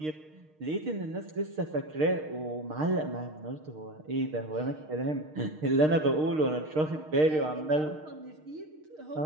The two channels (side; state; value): left; late; 6.5 ms